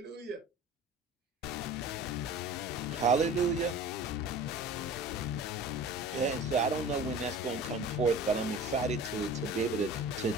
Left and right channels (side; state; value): both; normal; correlation 0.40